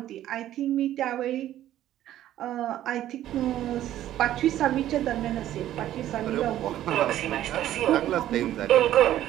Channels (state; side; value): quieter; left; 12.8 dB